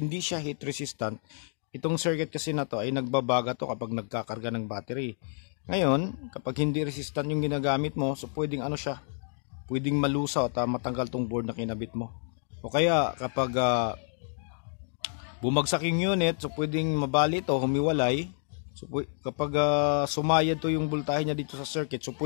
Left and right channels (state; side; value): silent; right; digital silence